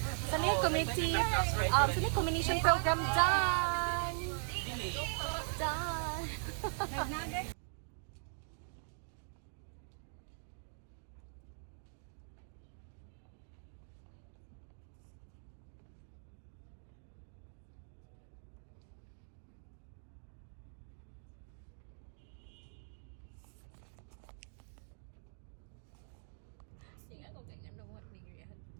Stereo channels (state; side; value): silent; left; digital silence